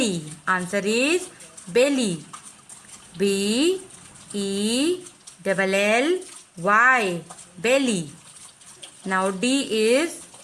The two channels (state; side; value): identical; both; correlation 1.00